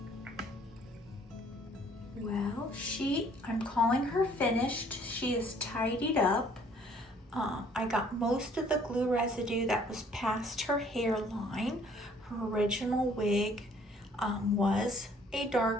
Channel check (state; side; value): normal; both; correlation 0.59